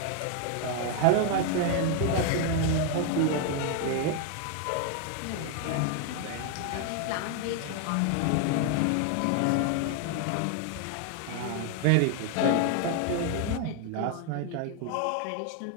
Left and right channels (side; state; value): both; different; correlation 0.01